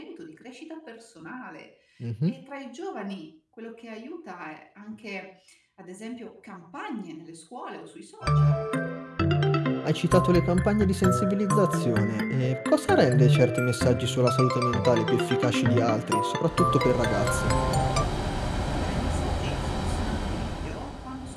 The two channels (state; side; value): identical; both; correlation 1.00